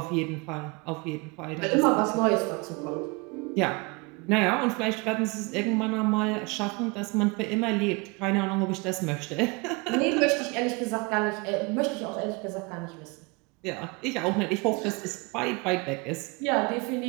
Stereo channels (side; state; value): left; quieter; 28.2 dB